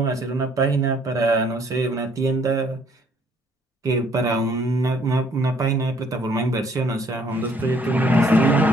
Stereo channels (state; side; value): normal; both; correlation 0.63